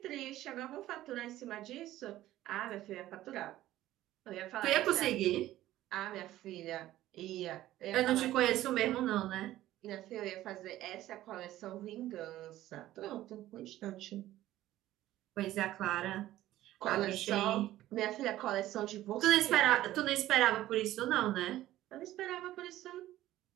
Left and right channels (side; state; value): left; quieter; 14.6 dB